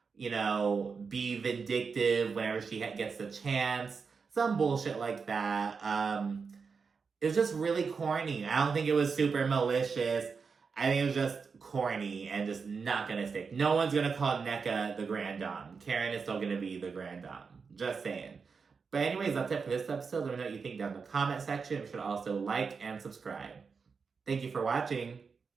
be vindictive whenever she gets the chance. Some bullshit like that. It was just really corny. I don't think it was super malicious. I think it was just corny and just not gonna stick. No one's gonna call NECA the Grand Dame. Karen is still gonna be the Grand Dame. Just saying. But anyways, that's it for this episode. Let me know what you think down in the comment section. You should also like and subscribe. Thank you for watching.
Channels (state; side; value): quieter; left; 5.3 dB